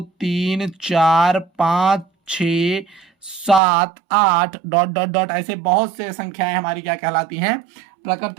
3 4 5 6 7 8 डॉट डॉट डॉट, ऐसे बहुत से संख्याएं हमारी क्या कहलाती हैं?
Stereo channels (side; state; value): left; drops out; at 3.6 s